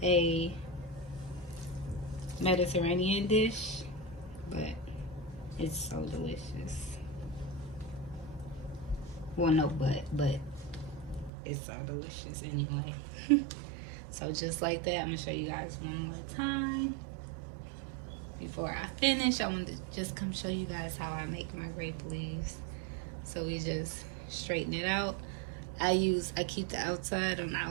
a Mediterranean dish, but it's so delicious. Well, no, but it's so delicious anyway. So just like that, I'm gonna show you guys one more time. Before I finish, I want to just come show you guys how I make my grape leaves. So we just straighten it out. I keep the outside on the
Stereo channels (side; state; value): left; drops out; at 11.3 s